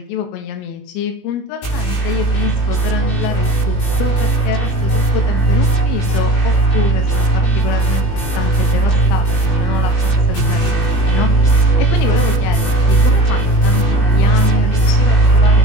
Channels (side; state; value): right; late; 21 ms